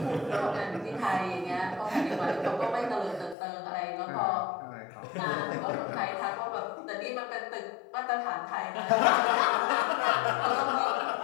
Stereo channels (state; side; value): drops out; right; at 3.4 s